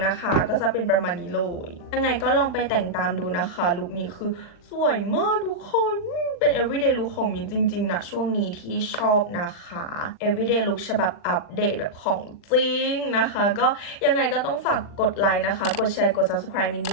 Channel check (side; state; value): right; late; 40 ms